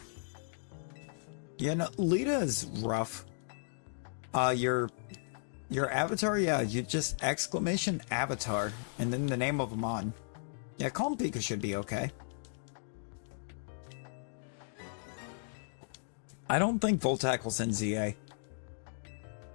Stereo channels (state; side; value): silent; right; digital silence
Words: Yeah, no, Lita is rough. Your avatar, yeah, you just exclamation avatar, and then the name of them on. Yeah, Calm Pika should be okay. I don't think Volt Tackle's in ZA.